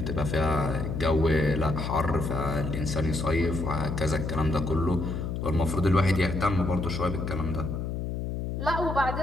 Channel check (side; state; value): left; noise; hum, 3 dB below the sound